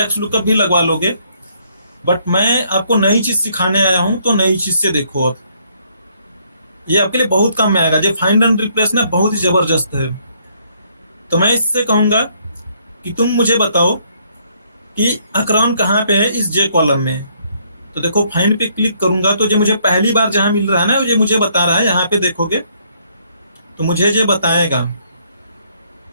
एक्स लुकअप भी लगवा लोगे, बट मैं आपको नई चीज सिखाने आया हूं तो नई चीज से देखो। अब ये आपके लिए बहुत काम में आएगा। जो फाइंड एंड रिप्लेस ना बहुत ही जबरदस्त है। तो मैं इससे कहूंगा कि तुम मुझे बताओ कि अकरॉन कहाँ पे है इस जे कॉलम में। तो देखो फाइंड पे क्लिक करूंगा तो जो मुझे पहली बार जहां मिल रहा है ना, ये मुझे बता रहा है। यहाँ पे देखोगे तो मुझे ये बताएगा,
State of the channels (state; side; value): inverted; both; correlation -0.68